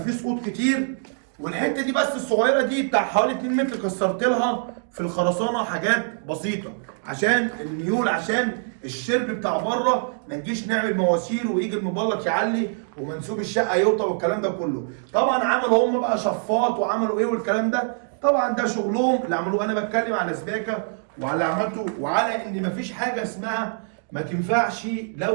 سقوط كتير، والحته دي بس الصغيره دي بتاع حوالي 2 متر كسرت لها في الخرسانه حاجات بسيطه عشان الميول، عشان الشرب بتاع بره ما نجيش نعمل مواسير ويجي المبلط يعلي ومنسوب الشقه يوطى والكلام ده كله. طبعا عملوا هم بقى شفاط وعملوا ايه والكلام ده، طبعا ده شغلهم اللي عملوه. انا بتكلم على سباكه وعلى اللي عملته وعلى ان مفيش حاجه اسمها ما تنفعش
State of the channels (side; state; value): left; silent; digital silence